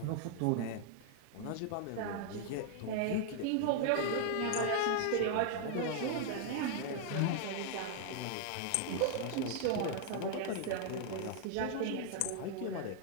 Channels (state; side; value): different; both; correlation 0.00